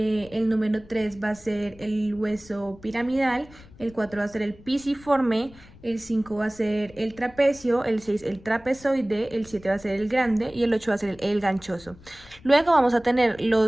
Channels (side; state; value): left; noise; rumble, 23 dB below the sound